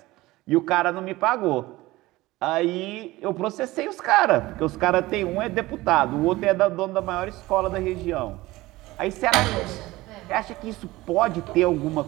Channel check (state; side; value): quieter; left; 18.9 dB